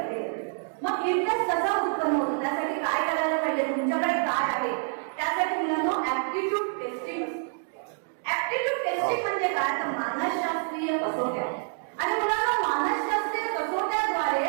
मग इंटरेस्ट कसा उत्पन्न होतो, त्यासाठी काय करायला पाहिजे, तुमच्याकडे काय आहे, त्यासाठी मुलांना ऍप्टिट्यूड टेस्टिंग. ऍप्टिट्यूड टेस्टिंग म्हणजे मानसशास्त्रीय कसोट्या. आणि मुलांना मानसशास्त्रीय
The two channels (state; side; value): silent; left; 60 dB below the other